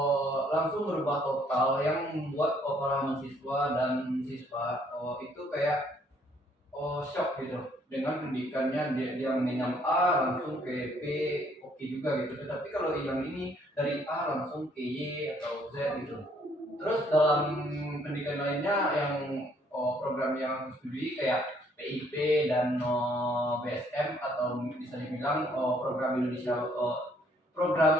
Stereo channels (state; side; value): normal; both; correlation 0.65